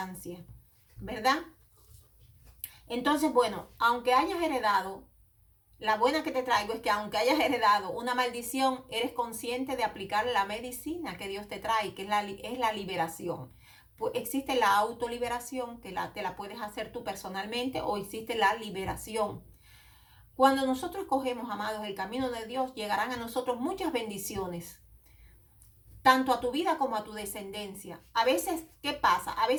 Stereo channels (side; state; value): both; identical; correlation 1.00